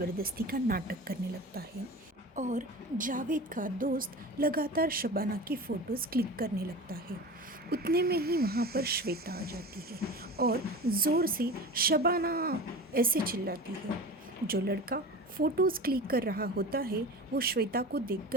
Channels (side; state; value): both; normal; correlation 0.33